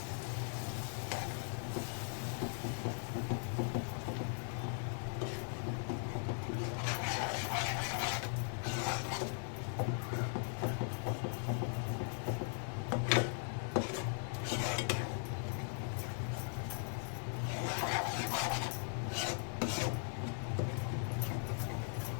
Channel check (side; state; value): right; silent; 52 dB below the other